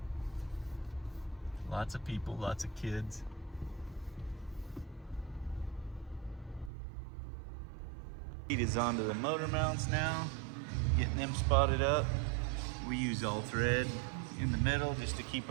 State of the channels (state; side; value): drops out; left; at 6.7 s